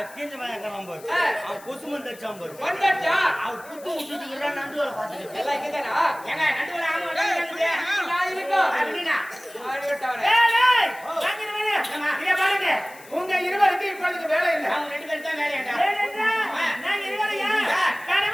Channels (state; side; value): noise; left; hiss, 21 dB below the sound